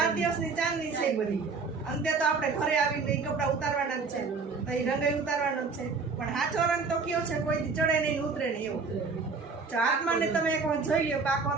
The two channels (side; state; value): left; quieter; 4.6 dB